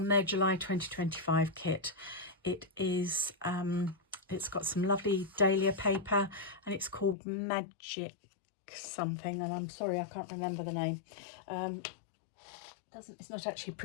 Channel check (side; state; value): right; drops out; at 7.2 s